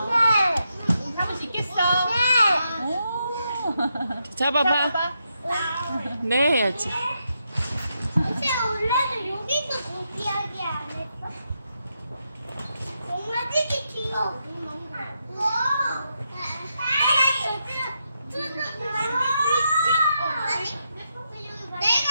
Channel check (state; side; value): inverted; both; correlation -0.83